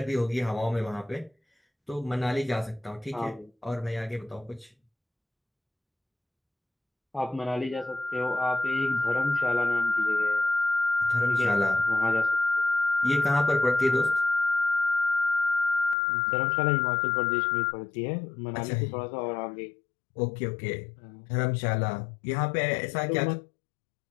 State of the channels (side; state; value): right; drops out; at 16.0 s